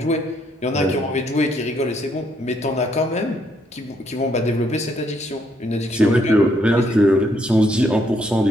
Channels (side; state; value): both; normal; correlation 0.72